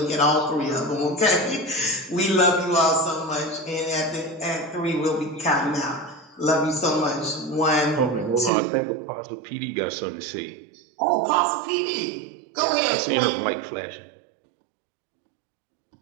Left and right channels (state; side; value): drops out; left; at 8.5 s